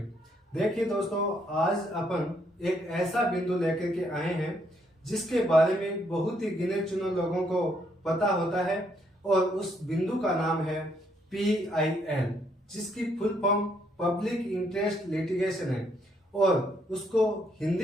देखिए दोस्तों, आज अपन एक ऐसा बिंदु लेकर के आए हैं जिसके बारे में बहुत ही गिने चुने लोगों को पता होता है और उस बिंदु का नाम है PIL, जिसकी full form public interest litigation है और उसको हिंदी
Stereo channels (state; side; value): normal; both; correlation 0.72